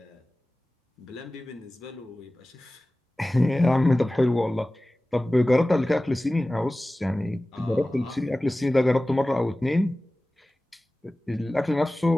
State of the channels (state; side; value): normal; both; correlation 0.97